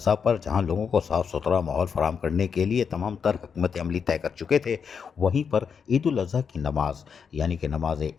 پر جہاں لوگوں کو صاف ستھرا ماحول فراہم کرنے کے لیے تمام تر حکمت عملی طے کر چکے تھے، وہیں پر عید الاضحیٰ کی نماز یعنی کہ نماز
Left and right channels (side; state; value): right; quieter; 6.5 dB